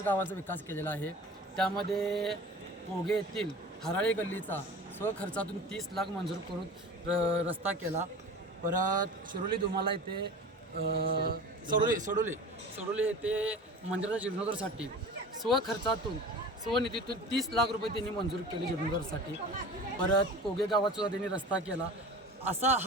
गावांचा विकास केलेला आहे. त्यामध्ये पोगे येथील हराळी गल्लीचा स्वखर्चातून 30 लाख मंजूर करून रस्ता केला. परत शिरोली धुमाला येथे सोडोली येथे मंदिराच्या जीर्णोद्धारासाठी स्वखर्चातून स्वनिधीतून 30 लाख रुपये त्यांनी मंजूर केले जीर्णोद्धारासाठी. परत पोगे गावात सुद्धा त्यांनी रस्ता केला. असा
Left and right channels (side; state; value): both; normal; correlation 0.37